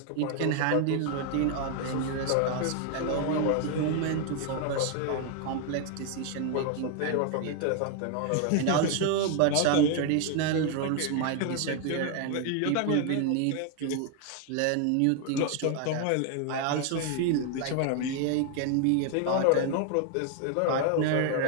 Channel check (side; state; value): both; different; correlation 0.00